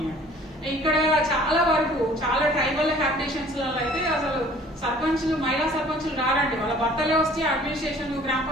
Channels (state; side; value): normal; both; correlation 0.52